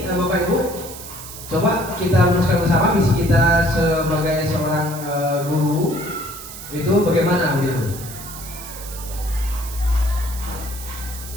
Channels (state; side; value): noise; right; hiss, 12 dB below the sound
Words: Bapak Ibu, coba kita rumuskan bersama visi kita sebagai seorang guru itu bagaimana begitu.